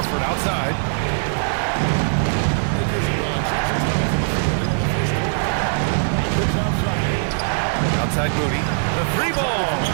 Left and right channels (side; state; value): left; silent; digital silence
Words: outside. Outside Moody. The 3-ball.